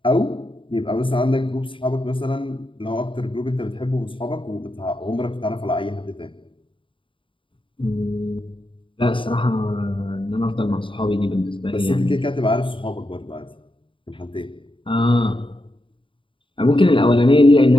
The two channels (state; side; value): late; right; 0.25 ms